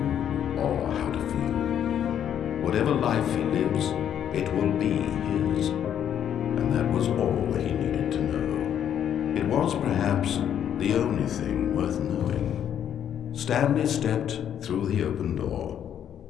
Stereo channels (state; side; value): quieter; right; 9.6 dB